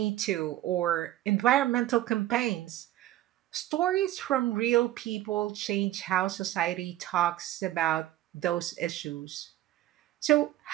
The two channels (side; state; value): left; quieter; 14.5 dB